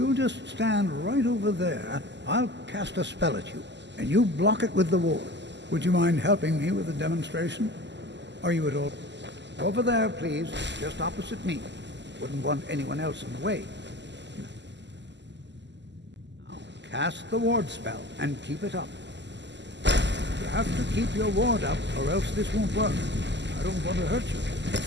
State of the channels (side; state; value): left; late; 0.51 ms